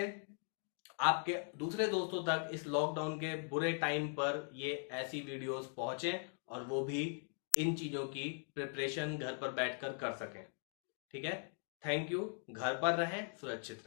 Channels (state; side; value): silent; right; 51 dB below the other